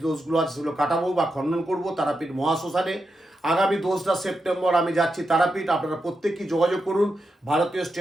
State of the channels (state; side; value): normal; both; correlation 0.87